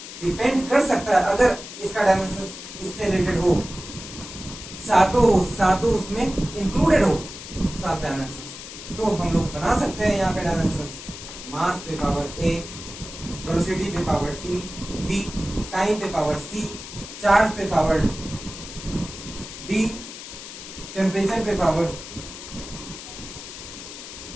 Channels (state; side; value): noise; left; hiss, 12 dB below the sound